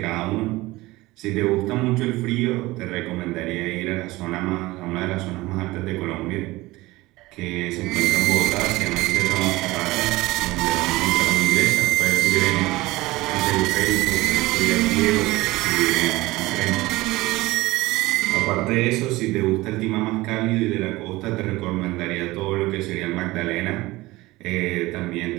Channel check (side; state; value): left; quieter; 19.8 dB